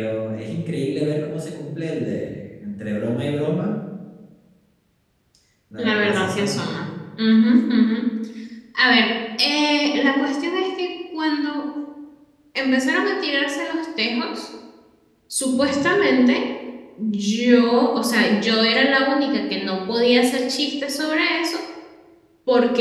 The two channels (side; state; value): both; identical; correlation 1.00